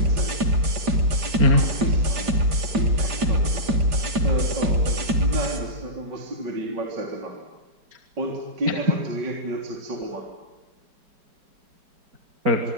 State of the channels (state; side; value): late; left; 5.0 ms